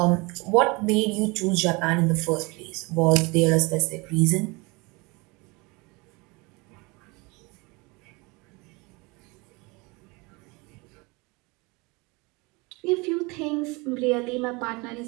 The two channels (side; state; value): left; quieter; 26.3 dB